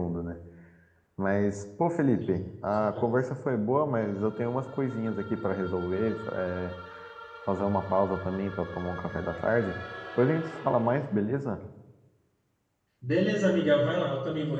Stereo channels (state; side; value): identical; both; correlation 1.00